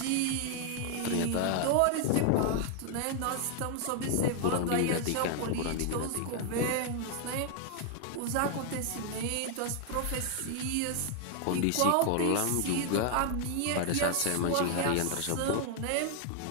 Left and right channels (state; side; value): different; both; correlation 0.00